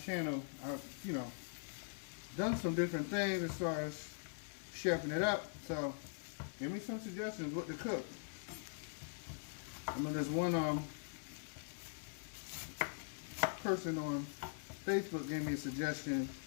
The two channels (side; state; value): right; silent; digital silence